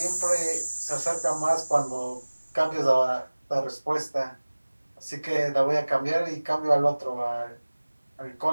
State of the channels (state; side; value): inverted; both; correlation -1.00